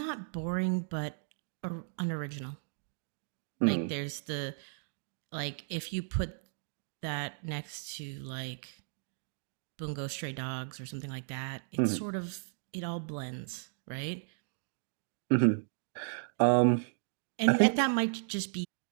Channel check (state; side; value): silent; left; digital silence